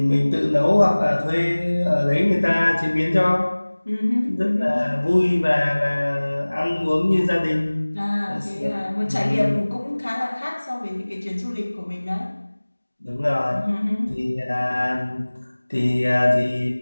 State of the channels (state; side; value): inverted; both; correlation -1.00